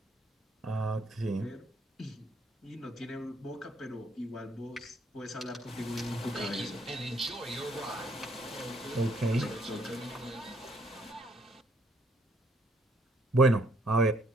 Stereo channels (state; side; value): normal; both; correlation 0.68